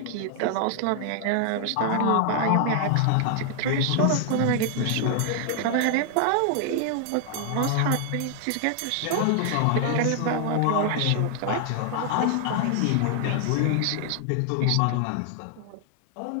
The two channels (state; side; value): different; both; correlation 0.00